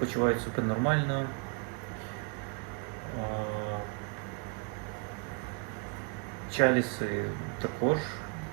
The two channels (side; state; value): left; quieter; 34.1 dB